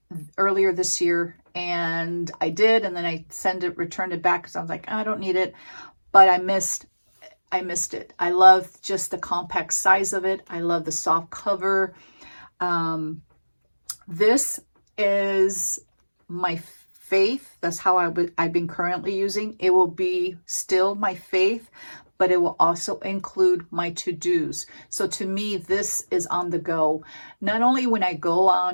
earlier this year, and I did, and then I returned it back because I was like, I don't need it. But I missed it. I love just the compact size of it. I love the soft cover. This is my faith. That's how I've been currently using. It will be still my faith, but it will also include my to-dos. So to me, this is on the go. Not only when I go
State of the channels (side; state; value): both; inverted; correlation -1.00